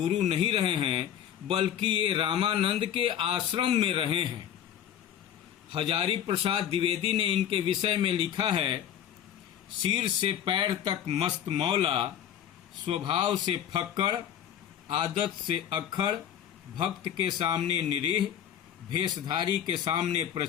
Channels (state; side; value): quieter; right; 10.0 dB